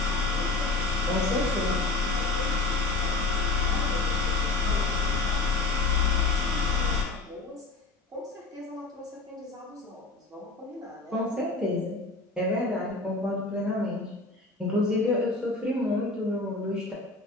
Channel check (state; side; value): quieter; right; 3.4 dB